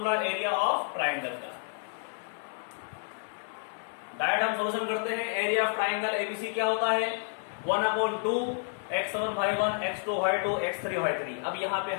एरिया ऑफ ट्राइंगल का। डायरेक्ट हम सॉल्यूशन करते हैं। एरिया ऑफ ट्राइंगल एबीसी क्या होता है, 1/2 x1 y1 x2 y2 x3 y3। अब यहाँ पे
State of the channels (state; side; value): silent; right; 57 dB below the other